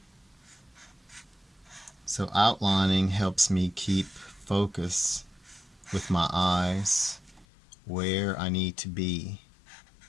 So outlining helps me keep focus with my eyes where I need to be.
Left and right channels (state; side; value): drops out; right; at 7.5 s